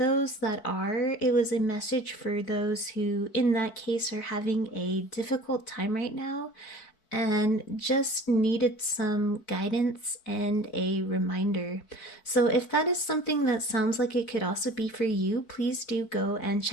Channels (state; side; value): late; right; 4.5 ms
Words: that are, it was a message for those who, in that case, are having a difficult time right now and just needed some guidance and a reminder. So if that is something that sounds like it could also be for you, please do go and